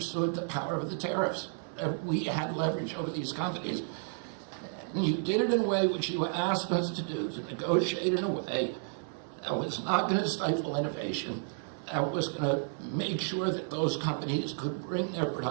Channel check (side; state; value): left; silent; 56 dB below the other